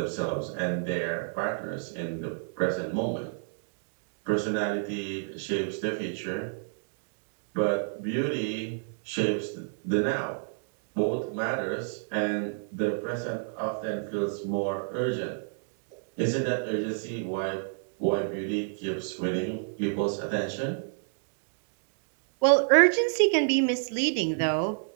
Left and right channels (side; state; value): left; silent; digital silence